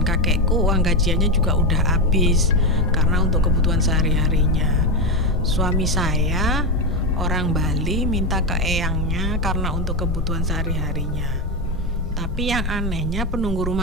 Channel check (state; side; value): normal; both; correlation 0.11